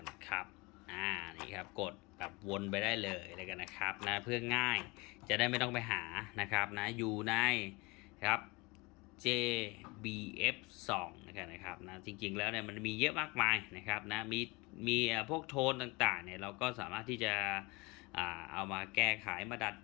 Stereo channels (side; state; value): right; quieter; 25.5 dB